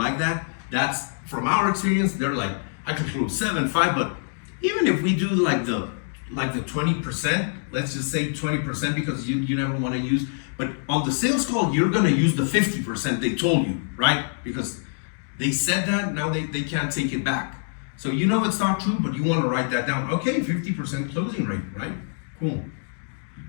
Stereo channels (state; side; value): silent; right; digital silence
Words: that. That's from our experience. They're like, I can close 7, 5, but even if we do like the 20%, let's just say 20% because you never want to use, but on the sales call, you're gonna use the 50% they told you, right? Because they said that, now they can't take it back. So you know it's not true, but you want to write that down. Okay, 50% closing rate, right? Cool.